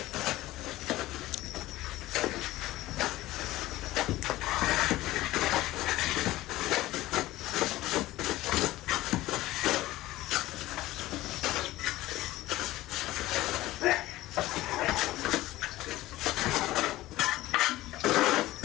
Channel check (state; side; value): quieter; right; 16.9 dB